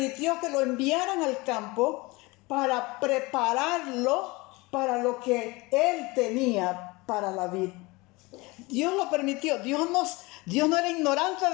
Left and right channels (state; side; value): quieter; right; 23.7 dB